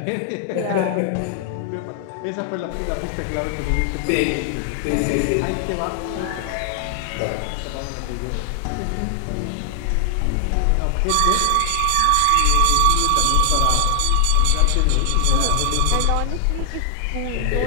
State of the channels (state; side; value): different; both; correlation 0.00